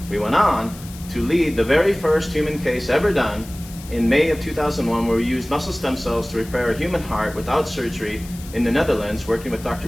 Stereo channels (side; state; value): left; noise; hiss, 18 dB below the sound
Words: We went on to lead the very first human case ever done in May of 2001, where we used muscle stem cells to repair a human heart without surgery in the Netherlands, working with Dr.